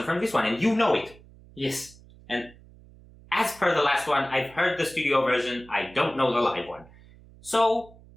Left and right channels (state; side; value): noise; right; hum, 23 dB below the sound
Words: from this one, and you know it. Yes. And as per the last one, I've heard the studio version, I don't know the live one. So,